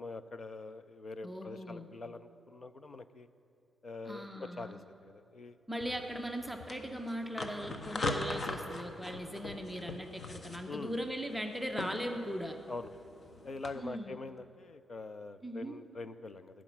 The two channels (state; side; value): normal; both; correlation 0.83